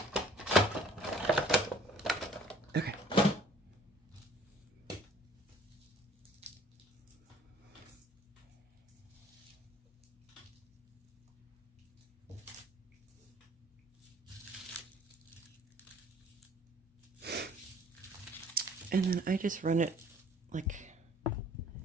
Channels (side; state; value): both; normal; correlation 0.54